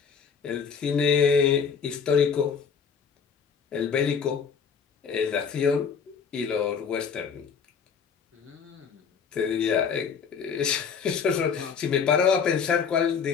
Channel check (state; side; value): quieter; right; 6.4 dB